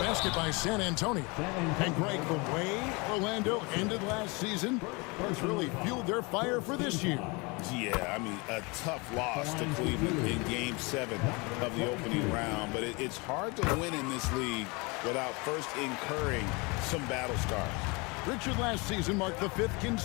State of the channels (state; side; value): quieter; right; 27.8 dB